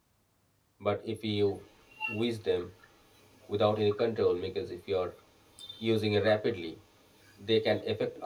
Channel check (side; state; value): both; identical; correlation 1.00